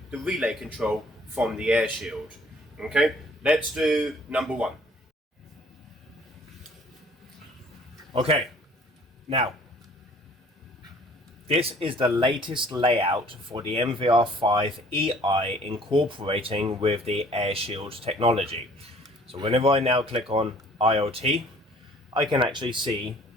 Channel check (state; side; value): normal; both; correlation 0.55